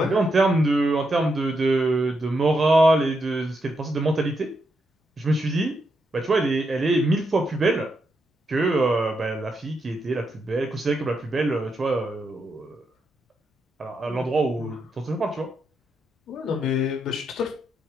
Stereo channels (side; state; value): both; normal; correlation 0.82